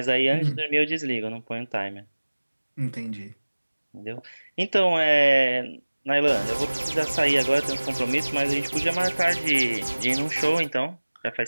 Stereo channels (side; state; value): both; inverted; correlation -1.00